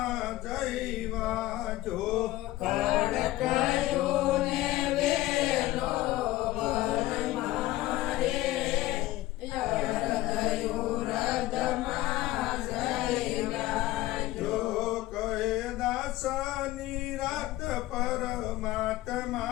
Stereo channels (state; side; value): quieter; right; 16.8 dB